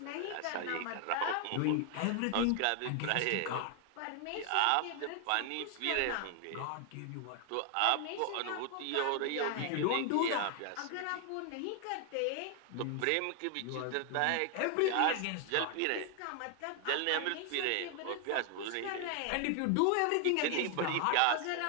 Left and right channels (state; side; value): different; both; correlation 0.00